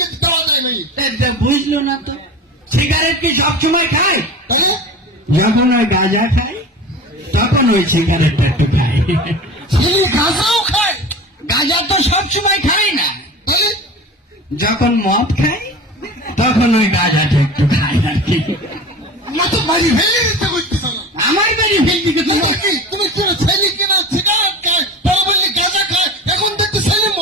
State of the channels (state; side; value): normal; both; correlation 0.34